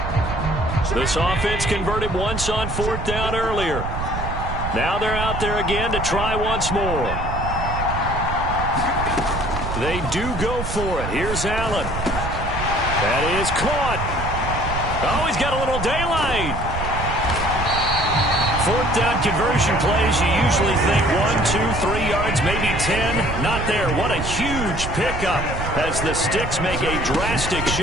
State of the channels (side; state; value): right; noise; rumble, 5 dB below the sound